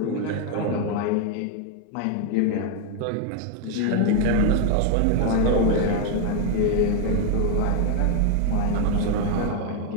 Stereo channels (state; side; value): different; both; correlation 0.01